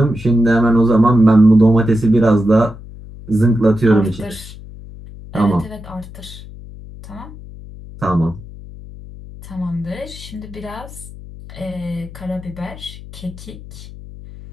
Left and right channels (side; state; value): left; noise; hum, 16 dB below the sound